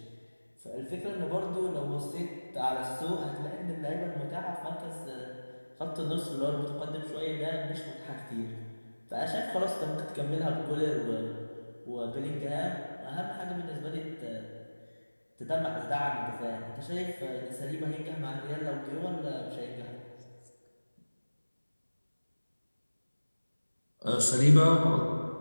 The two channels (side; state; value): both; inverted; correlation -1.00